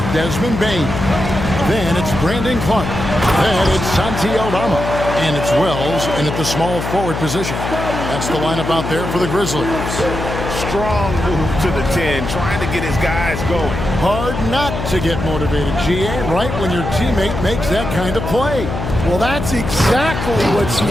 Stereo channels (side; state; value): left; noise; hum, 5 dB below the sound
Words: Desmond Bain. Then it's Brandon Clark. Then it's Santi Aldama. And it's Wells in at the small forward position. That's the lineup out there for the Grizzlies. Strong move to the 10, trying to get his guys going. Hard not to get motivated, GA, right when your teammate makes that kind of play. Well, that's exactly what's